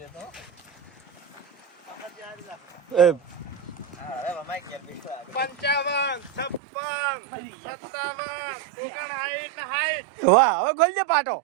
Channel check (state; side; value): drops out; left; at 6.6 s